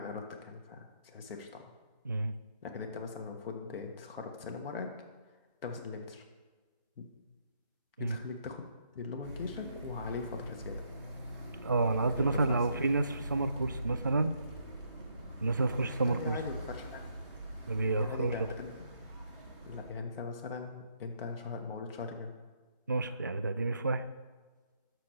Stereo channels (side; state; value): both; inverted; correlation -0.73